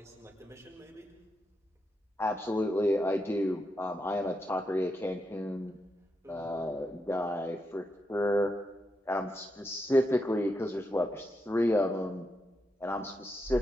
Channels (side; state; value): both; normal; correlation 0.84